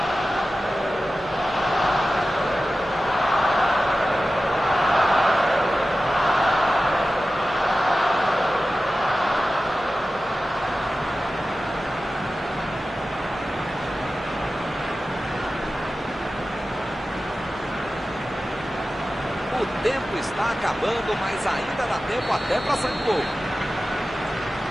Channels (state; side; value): normal; both; correlation 0.95